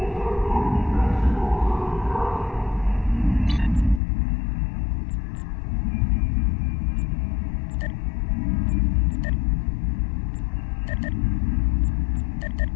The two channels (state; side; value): drops out; right; at 4.0 s